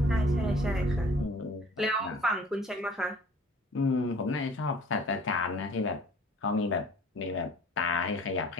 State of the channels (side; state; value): both; normal; correlation 0.49